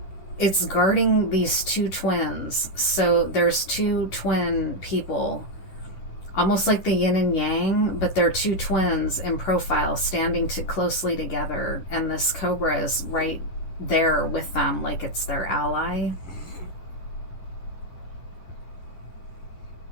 it's guarding these two twins. So there's two twin people, almost like the yin and yang, but they're two twins in profile standing closely together, and this cobra is right there with them like it's their ally.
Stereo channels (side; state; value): right; late; 10 ms